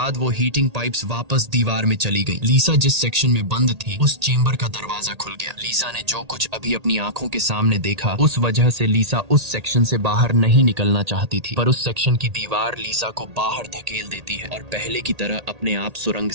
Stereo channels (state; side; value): late; left; 1.8 ms